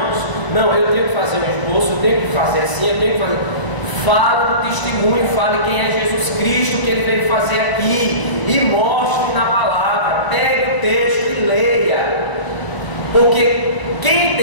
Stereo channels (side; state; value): right; late; 1.0 ms